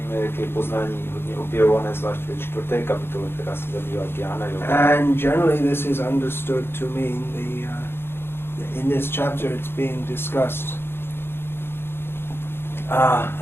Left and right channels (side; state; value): right; late; 0.11 ms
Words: jak je poznání hodně objevované, zvlášť ve 4. kapitole, která se zabývá Jnana Yoga. And generally this is understood to mean in this chapter it's being discussed